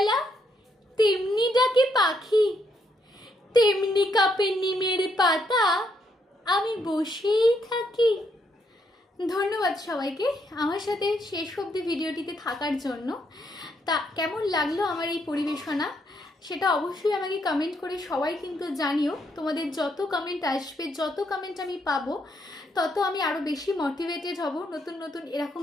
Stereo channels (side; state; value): both; normal; correlation 0.75